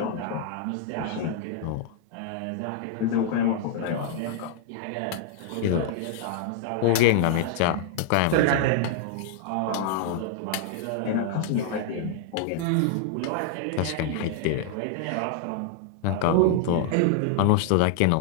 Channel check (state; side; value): different; both; correlation 0.00